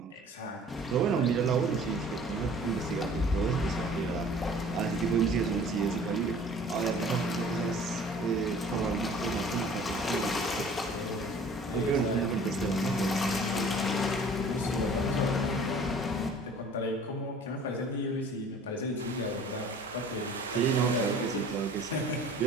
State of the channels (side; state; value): both; normal; correlation 0.49